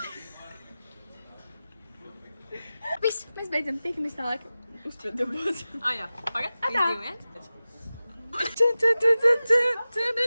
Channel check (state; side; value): inverted; both; correlation -0.96